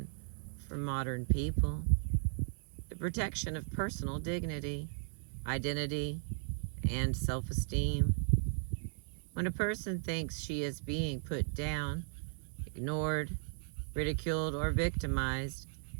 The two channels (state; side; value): silent; left; digital silence